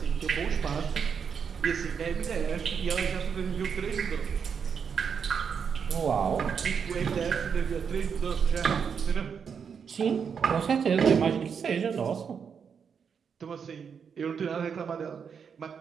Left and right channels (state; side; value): quieter; left; 6.7 dB